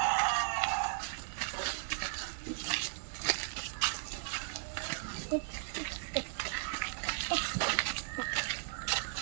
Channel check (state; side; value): silent; left; digital silence